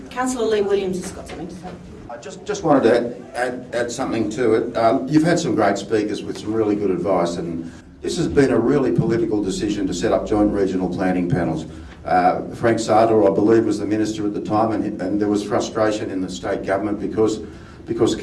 Councillor Lee Williams has got something to say. I just wanted to add something to it. You've had some great speakers with some really good advice, and this has been a really political decision to set up joint regional planning panels. Frank Sartor, I believe, was the minister at the time, and there was frustration in the state government because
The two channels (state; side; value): identical; both; correlation 1.00